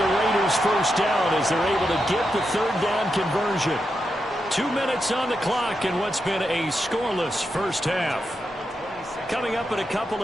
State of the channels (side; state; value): both; normal; correlation 0.86